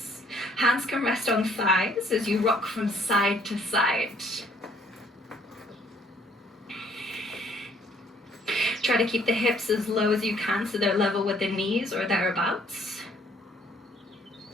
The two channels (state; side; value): normal; both; correlation 0.63